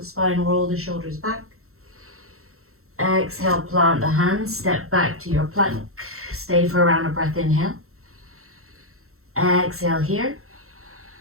spine, roll the shoulders back. Exhale, plant the hands, step back to your plank. Stay for a round of breath, inhale. Exhale here.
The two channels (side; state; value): left; late; 0.63 ms